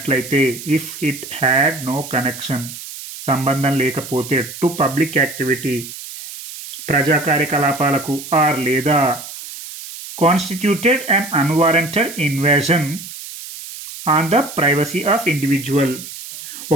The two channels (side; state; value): right; noise; hiss, 12 dB below the sound